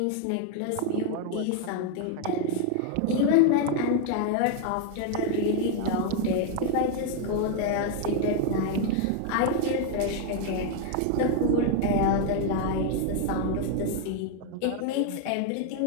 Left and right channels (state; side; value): different; both; correlation 0.01